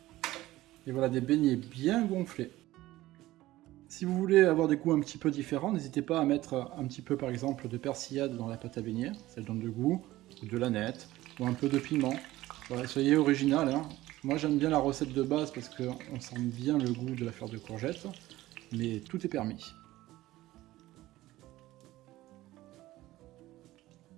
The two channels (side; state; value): left; quieter; 16.7 dB